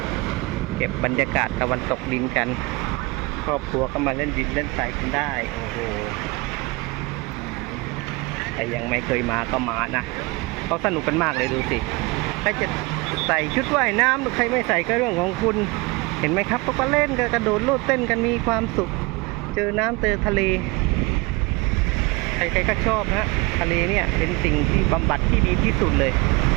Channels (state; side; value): quieter; left; 25.0 dB